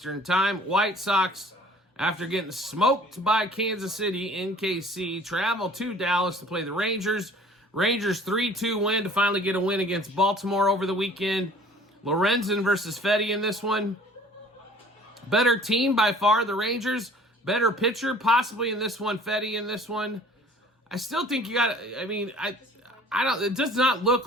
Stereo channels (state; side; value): normal; both; correlation 0.50